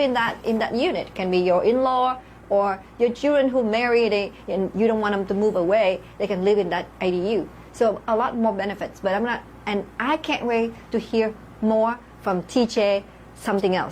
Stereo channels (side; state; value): both; identical; correlation 1.00